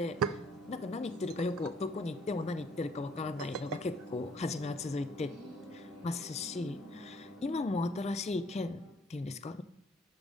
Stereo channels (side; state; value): both; normal; correlation 0.61